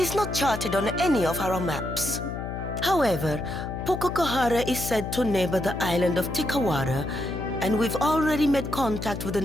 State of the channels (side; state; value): left; noise; hum, 6 dB below the sound